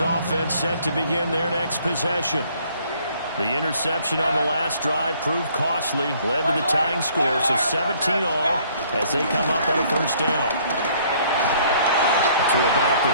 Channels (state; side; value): inverted; both; correlation -0.61